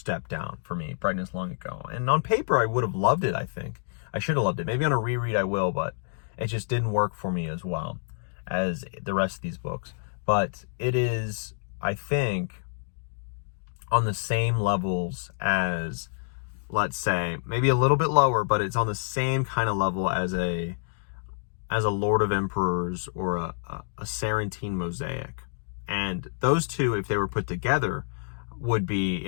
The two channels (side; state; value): right; silent; digital silence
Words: down for me, Brightness Long Ago. And on paper, I would have loved it, I think. I should have loved it. Maybe on a reread I will, but it just didn't work for me as well as the rest of these books. But it is, I think, on the same levels as, let's say, maybe a little bit lower, but it's on the same kind of level as a Lord of Emperors or a Sarantine Mosaic. And those two, if they were put together, would be